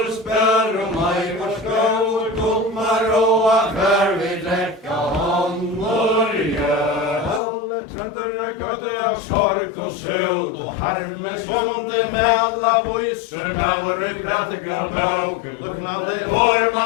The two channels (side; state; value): right; drops out; at 7.4 s